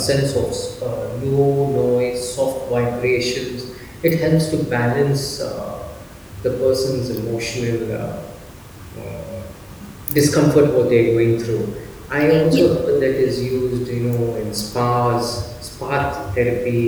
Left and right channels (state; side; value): identical; both; correlation 1.00